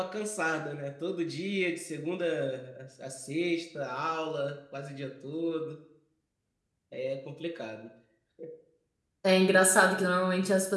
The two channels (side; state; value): both; identical; correlation 1.00